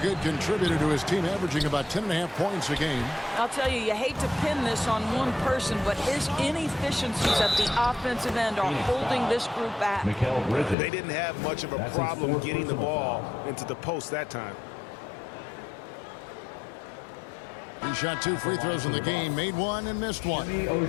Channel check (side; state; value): right; drops out; at 10.8 s